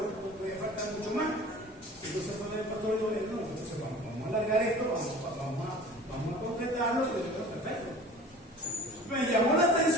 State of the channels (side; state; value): both; normal; correlation 0.43